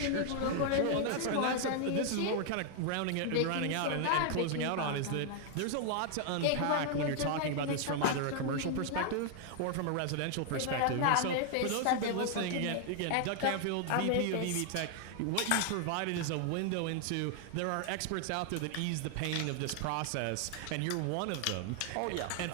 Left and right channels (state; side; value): different; both; correlation 0.00